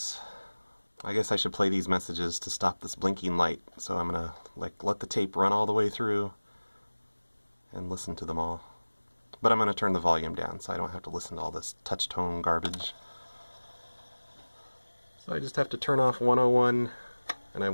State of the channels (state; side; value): inverted; both; correlation -1.00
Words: I guess I should play these messages to stop this blinking light. So I'm gonna let the tape run all the way through and listen to them all. But I'm gonna turn the volume down so I don't have to listen to all this touch tone garbage. So I just have to turn off 101 and I